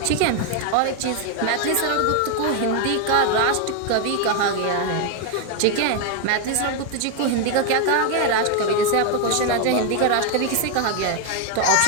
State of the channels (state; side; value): different; both; correlation 0.01